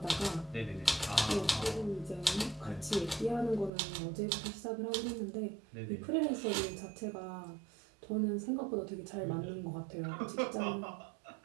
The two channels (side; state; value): left; drops out; at 3.7 s